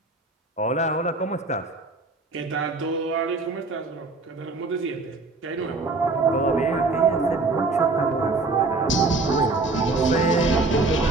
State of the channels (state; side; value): quieter; left; 3.5 dB